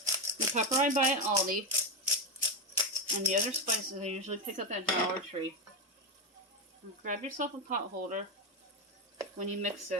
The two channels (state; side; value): normal; both; correlation 0.11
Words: The pepper I buy at Aldi, and the other spices I usually pick up at Dollar Tree. And grab yourself a pot holder when you mix